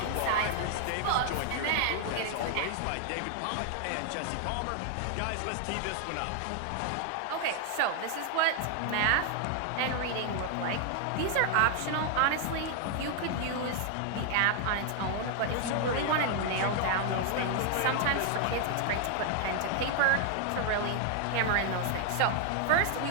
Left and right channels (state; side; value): different; both; correlation 0.00